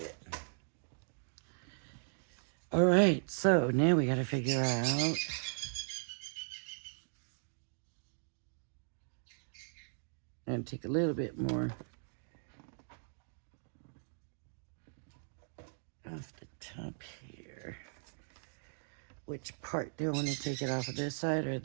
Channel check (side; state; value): left; silent; digital silence